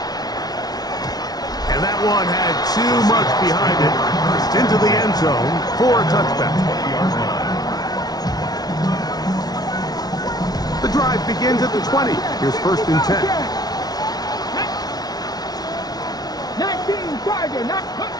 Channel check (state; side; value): late; right; 0.19 ms